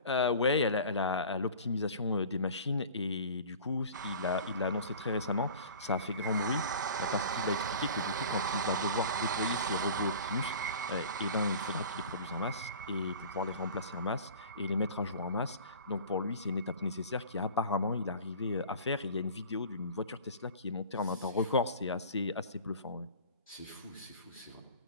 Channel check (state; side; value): inverted; both; correlation -0.41